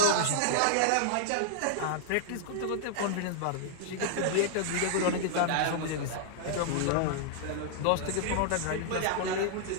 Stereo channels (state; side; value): different; both; correlation -0.01